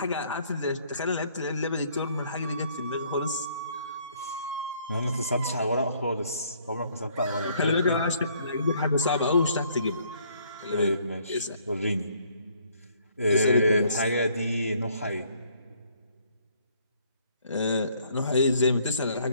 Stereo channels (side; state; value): both; inverted; correlation -0.64